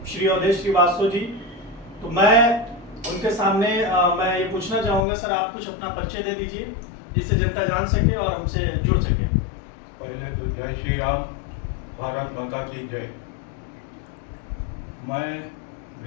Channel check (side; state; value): right; drops out; at 5.1 s